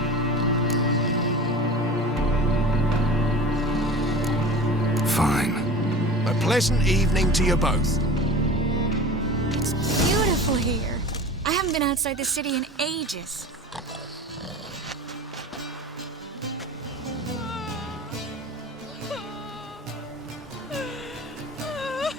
Fine. pleasant evening to you both. It's beautiful here. I haven't been outside the city in ages.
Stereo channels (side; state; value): both; normal; correlation 0.36